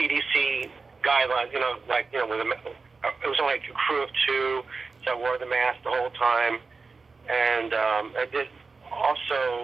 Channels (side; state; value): left; quieter; 4.3 dB